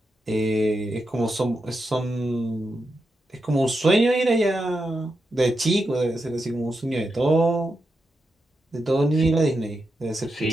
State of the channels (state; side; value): normal; both; correlation 0.87